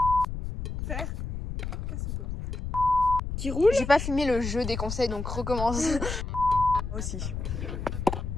Faire. Qui roule. J'ai pas filmé le jeu des conseils, donc recommence. Moi aussi.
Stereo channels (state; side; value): noise; left; rumble, 5 dB below the sound